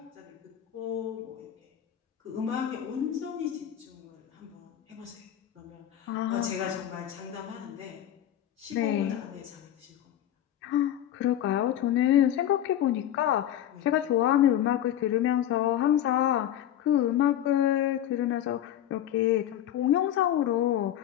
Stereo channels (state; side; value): quieter; right; 11.4 dB